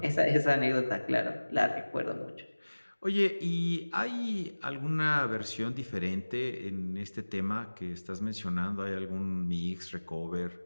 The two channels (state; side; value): inverted; both; correlation -1.00